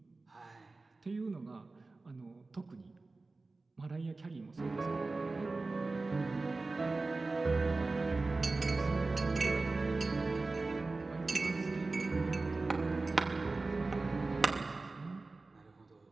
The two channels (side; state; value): left; quieter; 3.5 dB